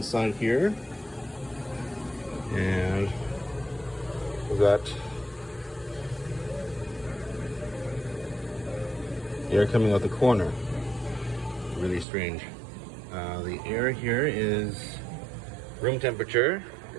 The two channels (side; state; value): left; drops out; at 12.1 s